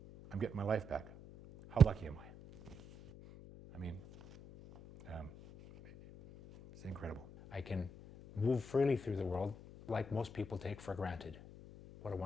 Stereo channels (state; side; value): noise; left; hum, 17 dB below the sound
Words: getting my life back. How lucky am I? I mean, it's incredible. I can move freely through the world like most people take for granted. What a